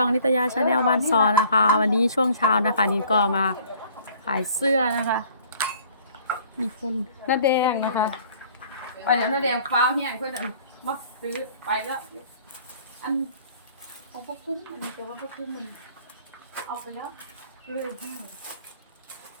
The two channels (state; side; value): inverted; both; correlation -0.54